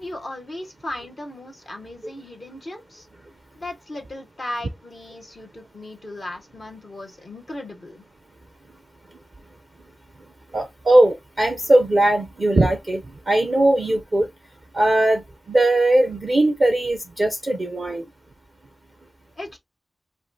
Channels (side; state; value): both; normal; correlation 0.96